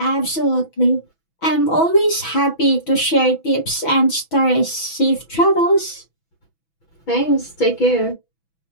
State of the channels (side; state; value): right; late; 6.1 ms